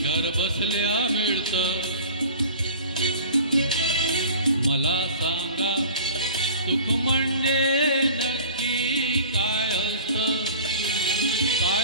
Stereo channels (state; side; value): inverted; both; correlation -0.43